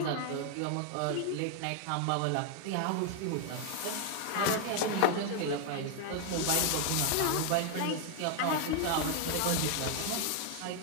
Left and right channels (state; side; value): different; both; correlation 0.00